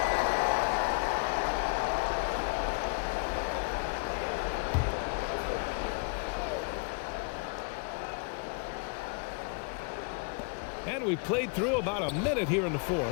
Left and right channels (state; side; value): quieter; right; 36.3 dB